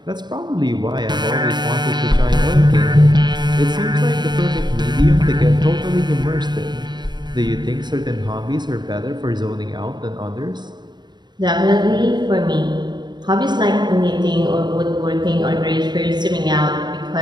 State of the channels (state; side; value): late; left; 0.21 ms